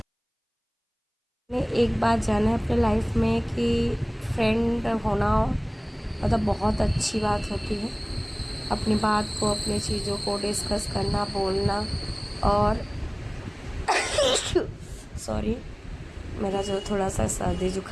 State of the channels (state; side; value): identical; both; correlation 1.00